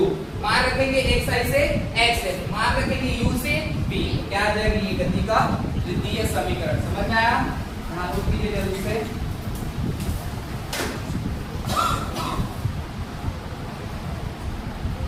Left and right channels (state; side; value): identical; both; correlation 1.00